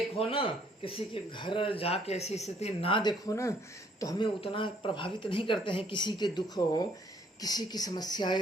ना, किसी के घर जाके ऐसी स्थिति ना देखो ना, तो हमें उतना प्रभावित नहीं करते हैं। किसी के दुख हो, किसी की समस्याएं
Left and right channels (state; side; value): normal; both; correlation 0.65